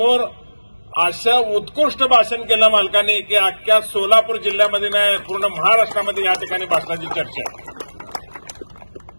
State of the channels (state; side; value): inverted; both; correlation -1.00